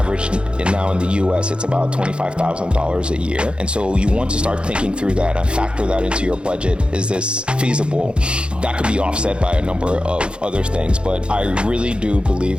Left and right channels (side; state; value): left; late; 0.055 ms